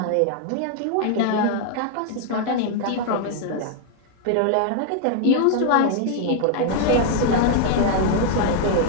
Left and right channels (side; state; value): both; different; correlation 0.00